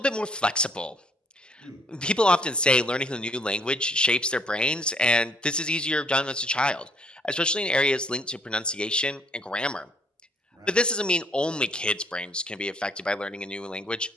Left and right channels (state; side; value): normal; both; correlation 0.65